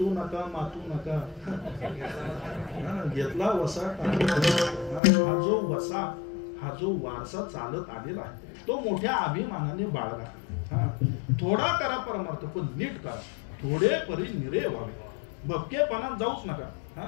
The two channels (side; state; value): right; drops out; at 5.0 s